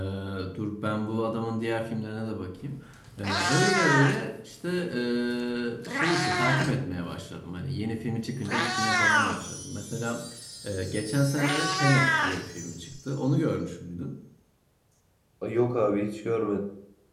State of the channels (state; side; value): identical; both; correlation 1.00